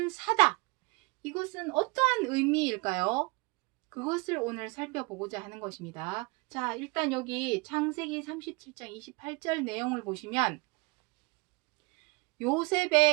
사다, 이것은 어떠한 의미일까요? 그것을 오늘 살펴보고자 하는 것입니다. 자, 일단 여기 창세기 37장 28절 내용을 보시면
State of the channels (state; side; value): quieter; left; 27.9 dB